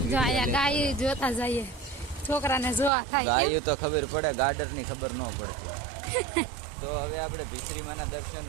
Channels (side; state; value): left; drops out; at 2.9 s